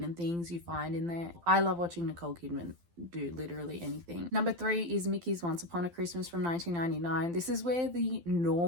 things you find in there. I love watching Nicole Kidman do literally anything. Number 3 is Mickey's Once Upon a Christmas from 1999. This is where the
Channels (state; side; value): late; left; 12 ms